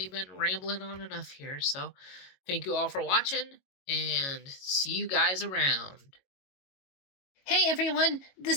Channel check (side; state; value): right; late; 22 ms